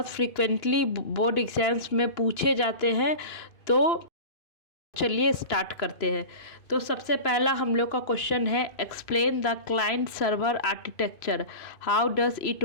फ्रीक्वेंटली बोर्ड एग्जाम्स में पूछे जाते हैं। तो चलिए स्टार्ट करते हैं। तो सबसे पहला हम लोग का क्वेश्चन है, explain the client server architecture, how does it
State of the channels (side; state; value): right; late; 2.5 ms